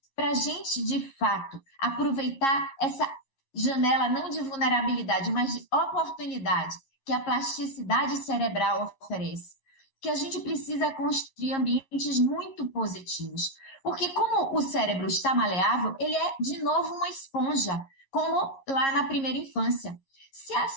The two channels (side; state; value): right; late; 11 ms